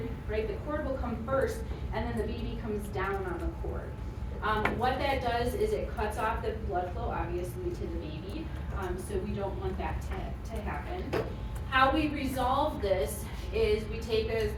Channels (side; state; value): both; identical; correlation 1.00